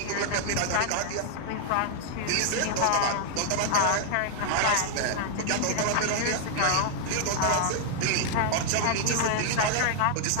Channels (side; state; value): both; different; correlation 0.00